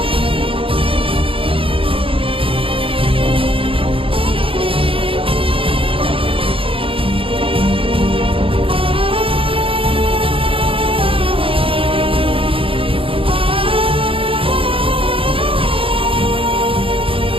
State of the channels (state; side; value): late; left; 0.26 ms